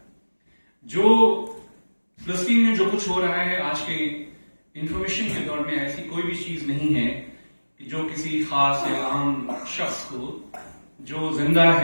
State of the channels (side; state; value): both; inverted; correlation -1.00